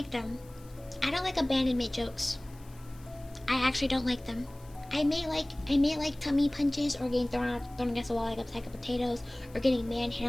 them. I don't like abandonment jokes. I actually don't like them. I may like tummy punches or getting thrown against the wall like a sack of potatoes or getting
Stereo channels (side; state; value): left; noise; hiss, 26 dB below the sound